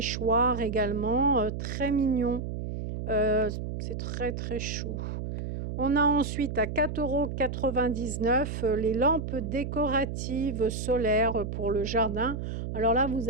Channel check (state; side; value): noise; right; hum, 5 dB below the sound